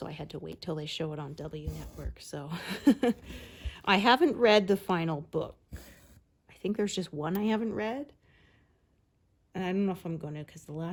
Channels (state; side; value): identical; both; correlation 1.00